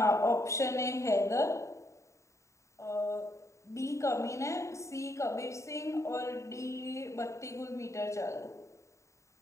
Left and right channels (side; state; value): right; late; 0.14 ms